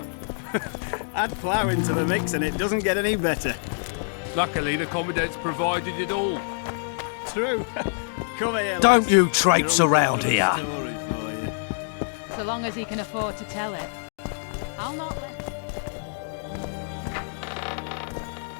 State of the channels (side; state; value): right; silent; digital silence